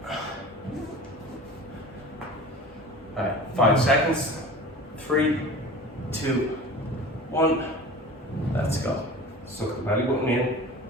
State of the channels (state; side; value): normal; both; correlation 0.37